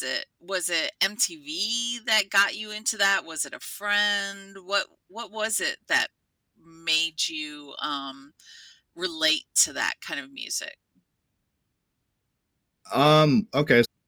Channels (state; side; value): identical; both; correlation 1.00